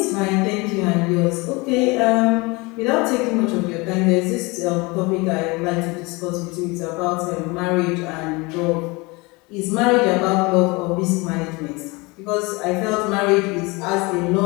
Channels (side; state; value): right; quieter; 25.6 dB